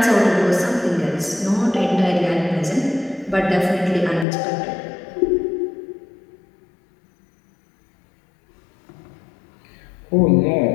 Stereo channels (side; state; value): right; drops out; at 4.2 s